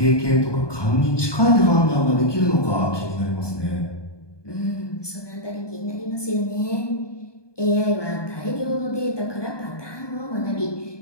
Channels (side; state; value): right; late; 1.2 ms